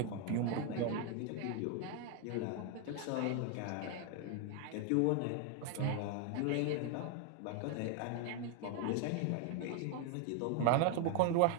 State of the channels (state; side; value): different; both; correlation 0.01